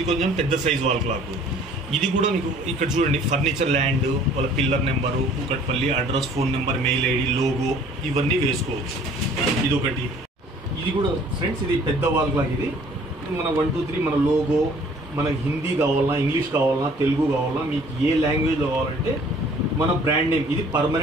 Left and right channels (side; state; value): both; normal; correlation 0.54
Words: కొంచెం పెద్ద సైజ్ వాల్ క్లాక్. ఇది కూడా మీకు ఇక్కడ చూడండి, ఫర్నిచర్ ల్యాండ్, వాళ్ళ pillar number, Kukatpally, address, phone number, mail ID, logo ఇవన్నీ వేసుకోవచ్చు. ఇది ఒకటి. ఇది కూడా ఫ్రెండ్స్, ఇది పెద్ద వాల్ క్లాక్. ఇది మన 1, 2, 3 మన లోగో, మనకి హిందీ కావాలన్నా, ఇంగ్లీష్ కావాలన్నా, తెలుగు కావాలన్నా, మీకు ఏ లాంగ్వేజ్లో కావాలంటే మన బ్రాండ్ నేమ్ ఇది